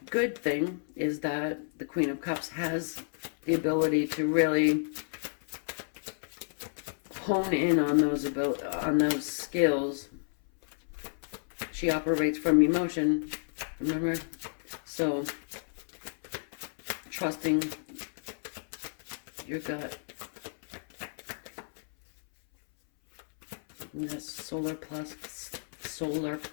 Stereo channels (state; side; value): silent; right; 57 dB below the other